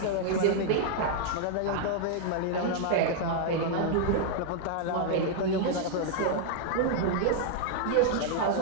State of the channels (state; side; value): different; both; correlation -0.01